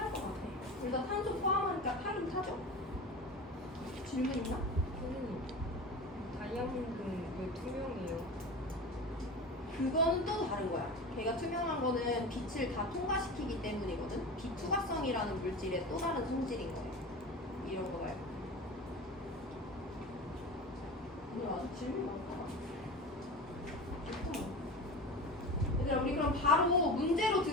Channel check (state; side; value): normal; both; correlation 0.31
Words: 것 같아. 일단 탄소 포함하니까 타긴 타죠. 질문 있나? 선생님, 다이아몬드는 왜 투명해요? 그건 또 다른 거야. 걔가 투명한 거는 빛을 다 통과시키기 때문이거든. 비투과성이라는 물질의 또 다른 성질인 거예요. 이런 거 말고. 오늘 아주 질문 많다. 얘들아, 우리 그럼 바로 문제로